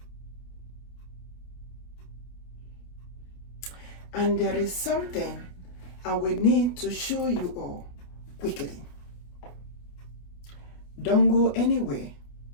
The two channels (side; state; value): right; late; 28 ms